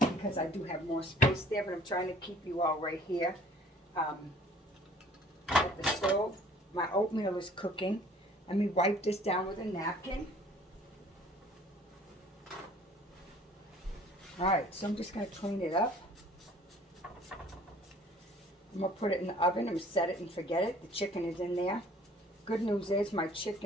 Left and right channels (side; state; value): both; normal; correlation 0.54